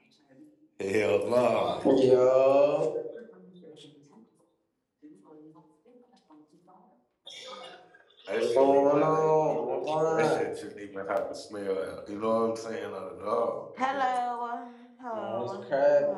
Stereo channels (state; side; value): identical; both; correlation 1.00